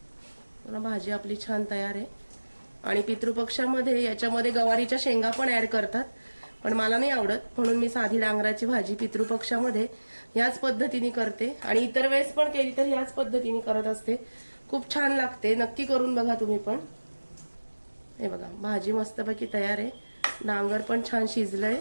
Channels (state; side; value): inverted; both; correlation -1.00